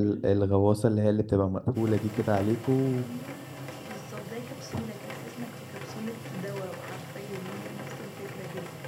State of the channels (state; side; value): identical; both; correlation 1.00